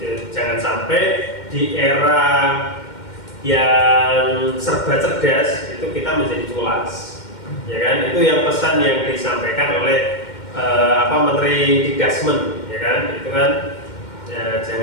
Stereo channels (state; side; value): late; right; 2.1 ms